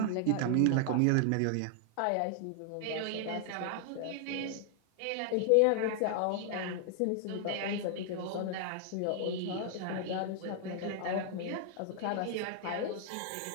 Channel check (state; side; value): different; both; correlation 0.00